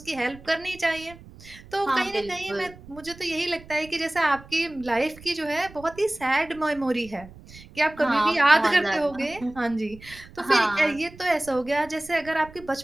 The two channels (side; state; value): right; noise; rumble, 20 dB below the sound